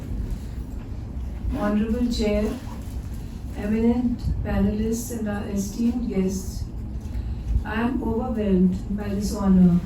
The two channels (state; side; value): identical; both; correlation 1.00